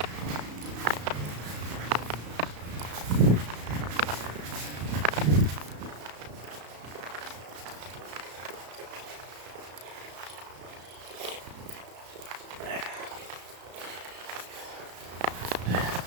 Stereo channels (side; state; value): left; late; 34 ms